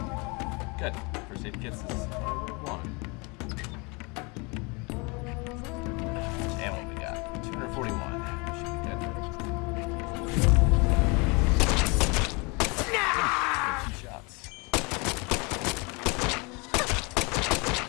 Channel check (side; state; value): right; quieter; 29.3 dB